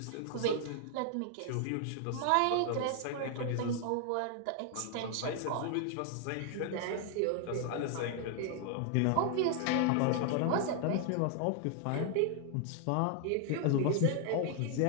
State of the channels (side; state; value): both; different; correlation 0.00